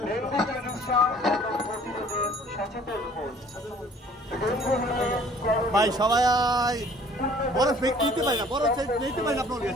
ডেঙ্গু চিকিৎসা এবং প্রতিরোধে সচেতন হন। ভাই সবাই বড় ফেক নিতে পারি না, বড় নিতে পারি না, আপনার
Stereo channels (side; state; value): both; normal; correlation 0.54